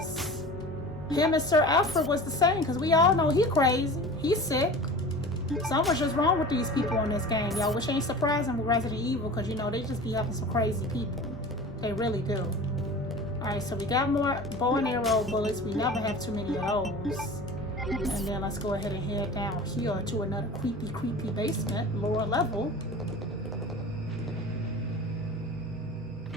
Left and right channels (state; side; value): normal; both; correlation 0.37